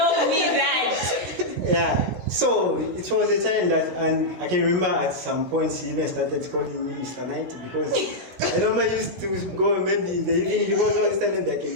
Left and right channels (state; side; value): late; left; 17 ms